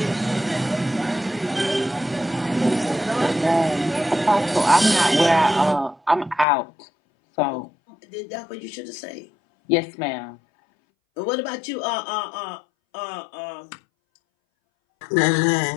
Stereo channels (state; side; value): drops out; right; at 6.5 s